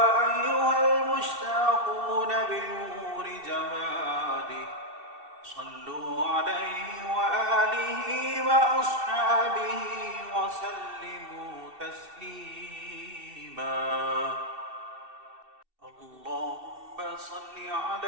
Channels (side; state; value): left; late; 2.7 ms